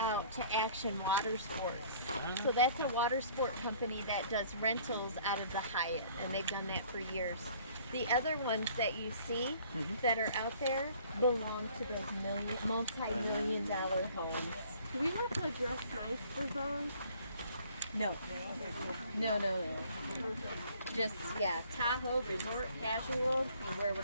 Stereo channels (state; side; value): inverted; both; correlation -0.55